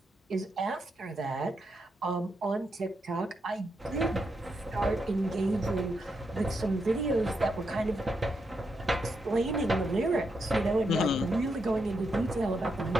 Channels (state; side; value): normal; both; correlation 0.82